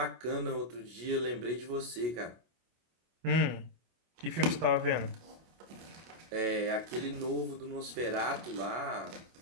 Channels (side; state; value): left; late; 25 ms